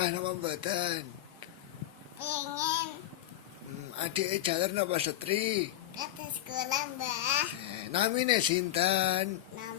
napa mboten? Pengen Adik jaler napa setri? ke sekolah, Mbah. Namine sinten?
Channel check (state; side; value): quieter; right; 13.5 dB